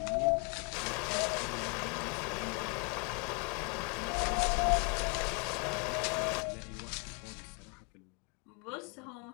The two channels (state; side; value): quieter; right; 35.5 dB